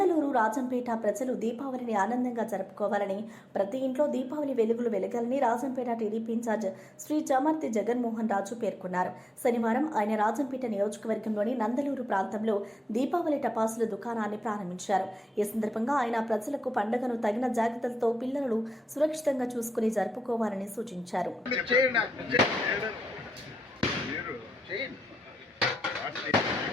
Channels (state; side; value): normal; both; correlation 0.88